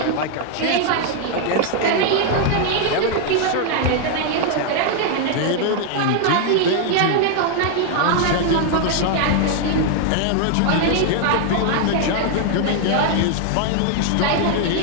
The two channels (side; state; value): both; different; correlation 0.00